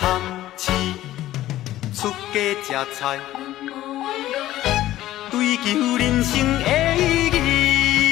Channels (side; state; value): right; quieter; 14.5 dB